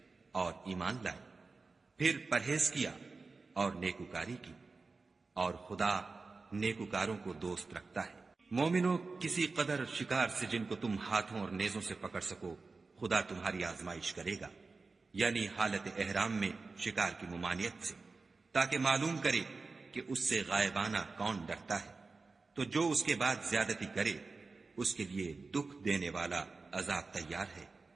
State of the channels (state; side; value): quieter; left; 4.0 dB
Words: اور ایمان لائے، پھر پرہیز کیا اور نیکوکاری کی، اور خدا نیکوکاروں کو دوست رکھتا ہے۔ مومنو، کسی قدر شکار سے جن کو تم ہاتھوں اور نیزوں سے پکڑ سکو خدا تمہاری آزمائش کرے گا، یعنی حالت احرام میں شکار کی ممانعت سے، تاکہ معلوم کرے کہ اس سے غائبانہ کون ڈرتا ہے، تو جو اس کے بعد زیادتی کرے اس کے لیے دکھ دینے والا عذاب تیار ہے۔